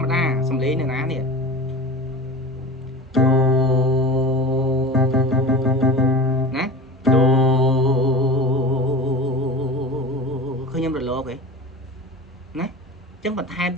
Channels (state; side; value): normal; both; correlation 0.33